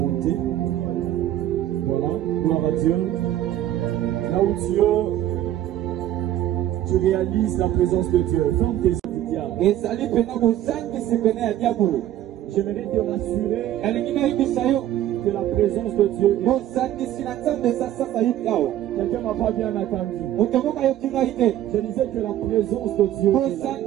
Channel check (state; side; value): quieter; left; 12.5 dB